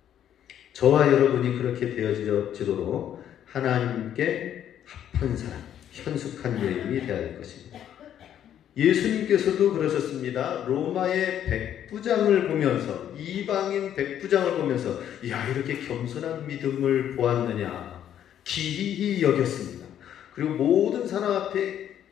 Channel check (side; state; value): right; quieter; 10.3 dB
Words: 저와 여러분이 그렇게 되어지도록 하나님께 합한 사람, 현숙한 여인이 되어야 될 것입니다. 예수님께서도 그러셨습니다. 로마의 백부장을 보면서, 이방인 백부장을 보면서 야, 이렇게 겸손한 믿음을 보았느냐 기이히 여겼습니다. 그리고 모든 사람 앞에